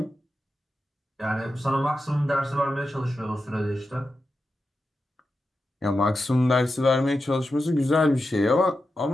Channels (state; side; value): normal; both; correlation 0.90